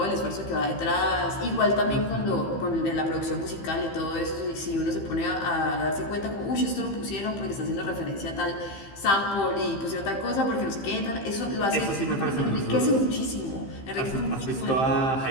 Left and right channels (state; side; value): late; right; 15 ms